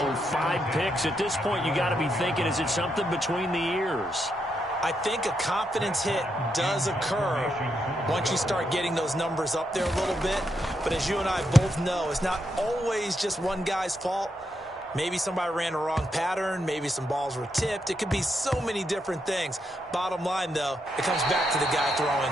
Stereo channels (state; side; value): normal; both; correlation 0.81